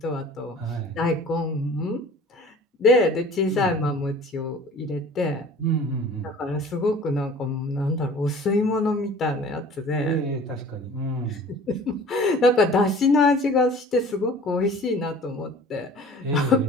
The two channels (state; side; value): normal; both; correlation 0.46